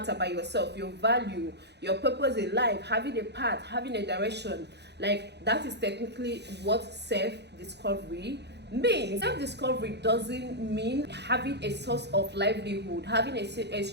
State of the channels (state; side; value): late; left; 0.49 ms